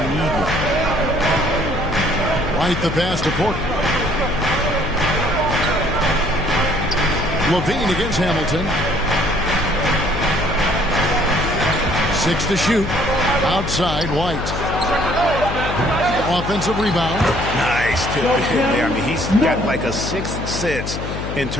one. White the pass to Porter. LaVine against Hamilton. 6 to shoot. Outside White. Offensive rebound. Nice tip to him there. I mean, he's got like a sixth sense in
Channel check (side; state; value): left; noise; hum, 5 dB below the sound